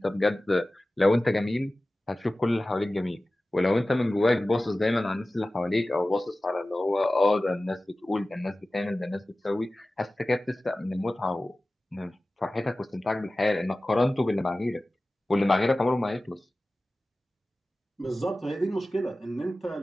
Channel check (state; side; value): normal; both; correlation 0.96